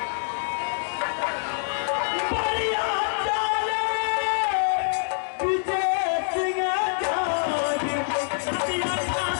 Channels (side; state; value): right; silent; digital silence